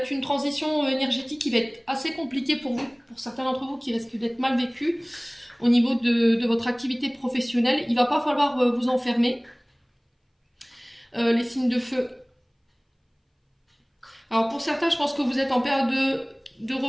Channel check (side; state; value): both; identical; correlation 1.00